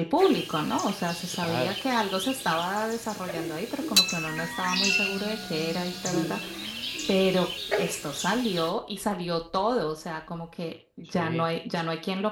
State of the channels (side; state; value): both; identical; correlation 1.00